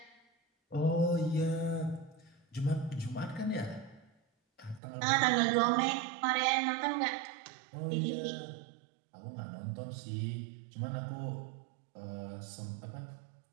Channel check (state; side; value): drops out; left; at 4.8 s